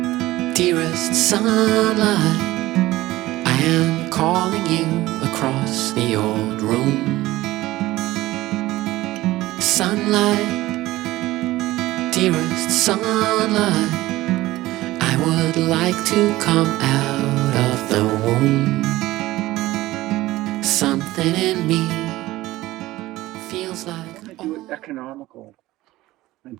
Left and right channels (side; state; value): left; quieter; 17.3 dB